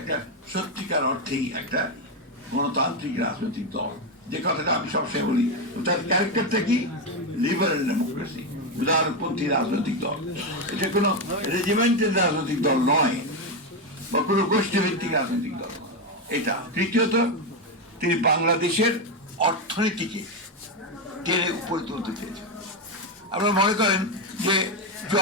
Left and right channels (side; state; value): both; normal; correlation 0.09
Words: সত্যিকার অর্থেই একটা গণতান্ত্রিক রাজনৈতিক দল, যে কথাটা আমি সবসময় বলি। তার ক্যারেক্টারটা কি? লিবারেল ডেমোক্রেসি, উদারপন্থী রাজনৈতিক দল। এটা কোনো রেজিমেন্টের রাজনৈতিক দল নয় বা কোনো গোষ্ঠীভিত্তিক রাজনৈতিক দল। এটা তৃতীয়ত, তিনি বাংলাদেশের অর্থনীতিকে টেনে উপরে তুলতে চেয়েছেন। আপনারা মনে করেন যে